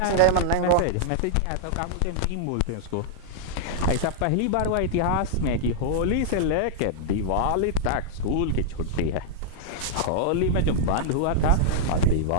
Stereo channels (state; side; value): different; both; correlation -0.02